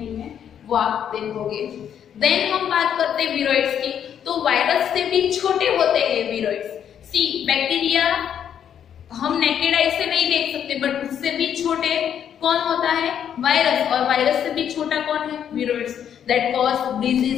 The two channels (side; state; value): right; quieter; 9.0 dB